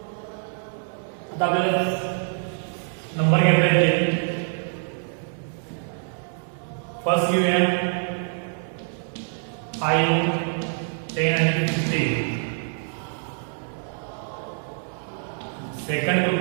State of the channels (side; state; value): left; silent; 61 dB below the other